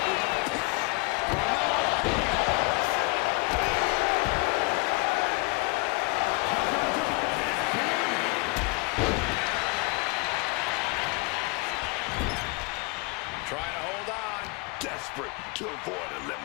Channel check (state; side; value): quieter; right; 28.0 dB